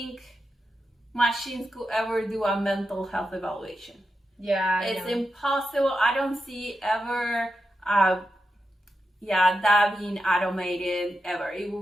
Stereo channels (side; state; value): both; normal; correlation 0.88